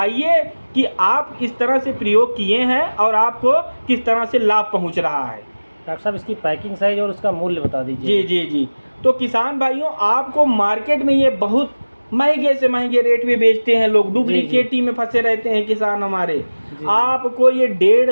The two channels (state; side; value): inverted; both; correlation -1.00